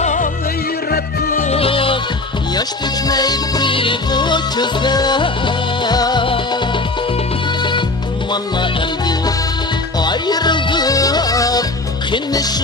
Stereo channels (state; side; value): quieter; right; 3.1 dB